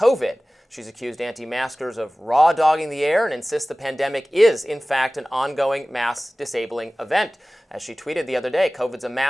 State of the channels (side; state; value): both; normal; correlation 0.98